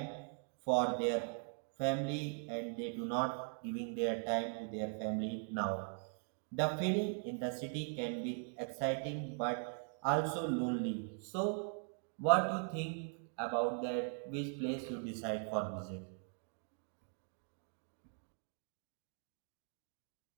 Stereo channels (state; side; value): silent; left; 51 dB below the other